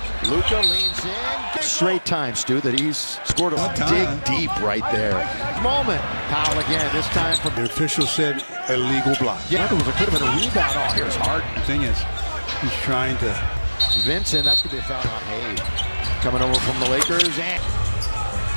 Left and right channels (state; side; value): inverted; both; correlation -1.00